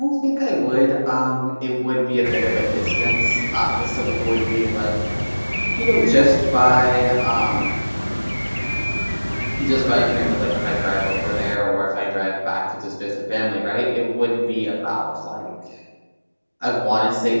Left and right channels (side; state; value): both; inverted; correlation -1.00